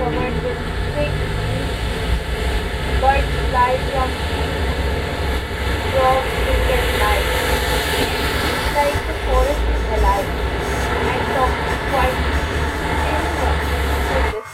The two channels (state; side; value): identical; both; correlation 1.00